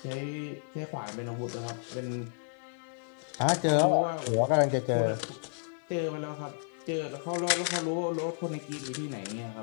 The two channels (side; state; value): right; silent; digital silence